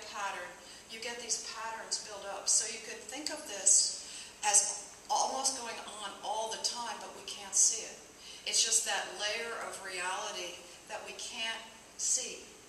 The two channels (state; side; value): identical; both; correlation 1.00